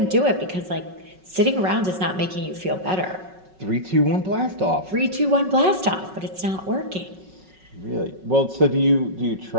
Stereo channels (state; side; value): late; left; 5.4 ms